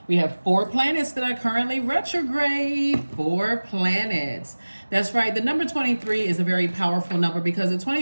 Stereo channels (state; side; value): inverted; both; correlation -1.00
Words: We have 4 planets that are currently retrograde. 4 planets. That's right. The number 23 is a very powerful number because the